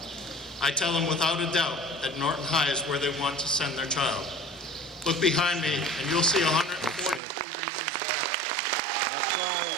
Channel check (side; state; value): left; drops out; at 7.2 s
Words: I tell them without a doubt that Norton High is where they want to send their child. Look behind me and you'll see 143 reasons why. That's right.